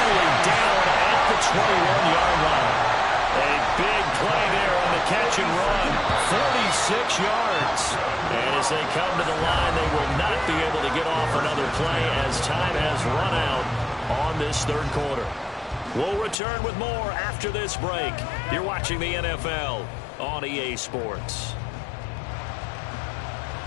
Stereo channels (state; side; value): drops out; right; at 16.4 s